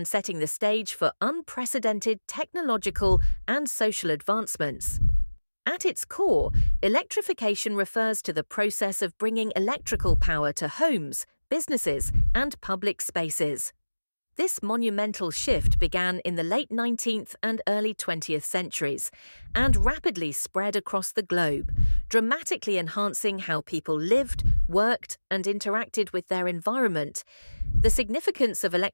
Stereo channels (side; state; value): both; inverted; correlation -1.00